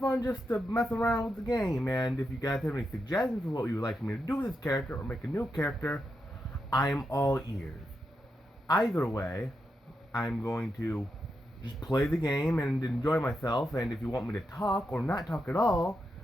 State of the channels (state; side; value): normal; both; correlation 0.85